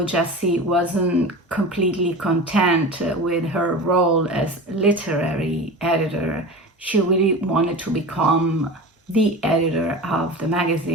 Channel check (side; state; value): both; normal; correlation 0.31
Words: Jessie wasn't completely content with her role as literary editor. She really wanted to become the editor of the